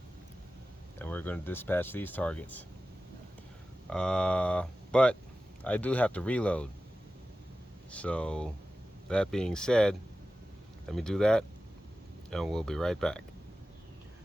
And we're going to dispatch these targets. But I do have to reload. So that being said, let me do that and we'll be right back.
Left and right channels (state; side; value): normal; both; correlation 0.94